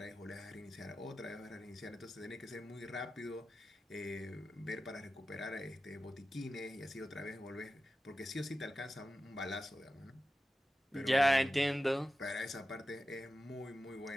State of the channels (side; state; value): both; normal; correlation 0.93